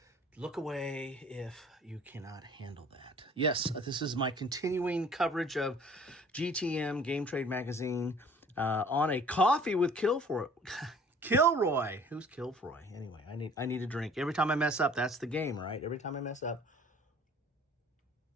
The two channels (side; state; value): both; normal; correlation 0.52